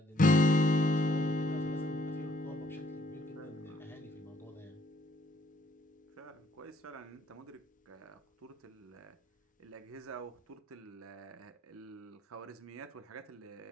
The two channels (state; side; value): normal; both; correlation 0.65